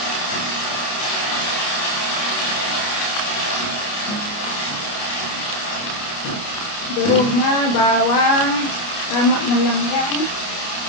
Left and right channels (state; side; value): late; right; 29 ms